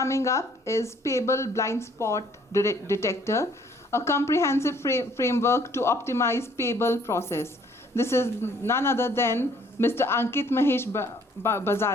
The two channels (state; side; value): normal; both; correlation 0.61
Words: up is Payable Blind Spot Detector, a comprehensive framework to optimize payable process. This is none other than Mr. Ankit Mahesh